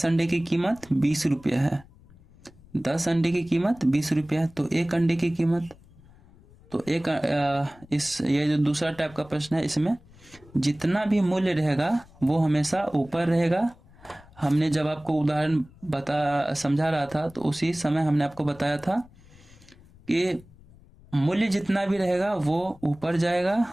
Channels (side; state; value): left; noise; rumble, 25 dB below the sound